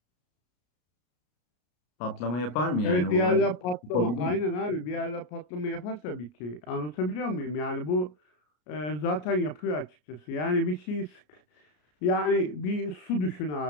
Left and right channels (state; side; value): late; right; 33 ms